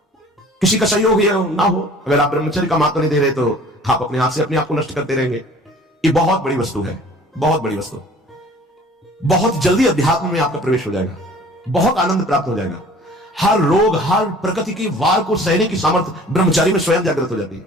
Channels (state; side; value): normal; both; correlation 0.49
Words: किसी का सहयोग ना हो, अगर आप ब्रह्मचर्य का महत्व नहीं दे रहे तो आप अपने हाथ से अपने आप को नष्ट करते रहेंगे। ये बहुत बड़ी वस्तु है, बहुत बड़ी वस्तु। बहुत जल्दी अध्यात्म में आपका प्रवेश हो जाएगा, बहुत आनंद प्राप्त हो जाएगा। हर रोग, हर प्रकृति की वार को सहने की सामर्थ्य ब्रह्मचारी में स्वयं जागृत हो जाती है।